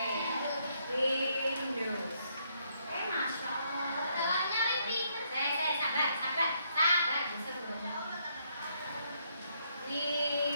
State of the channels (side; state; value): both; inverted; correlation -0.73